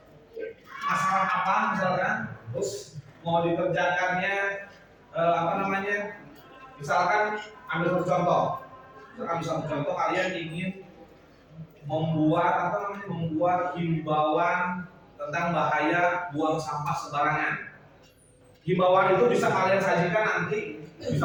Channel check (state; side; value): identical; both; correlation 1.00